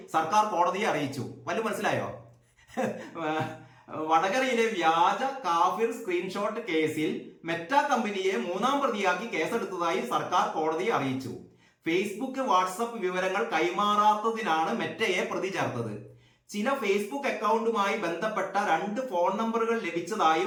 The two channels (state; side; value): identical; both; correlation 1.00